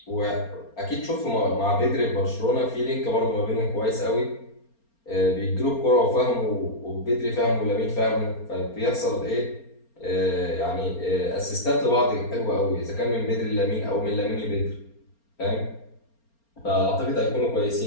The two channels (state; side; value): late; right; 4.3 ms